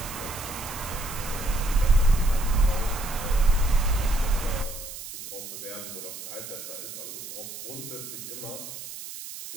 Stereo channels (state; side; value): noise; right; hiss, 10 dB below the sound